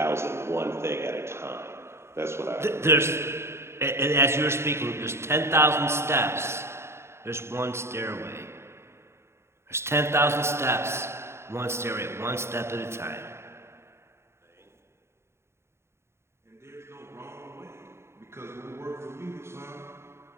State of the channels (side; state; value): left; late; 0.13 ms